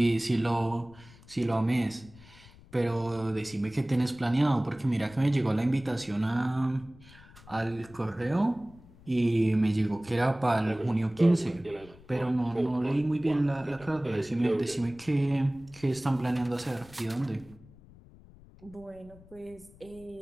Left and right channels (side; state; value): left; noise; rumble, 23 dB below the sound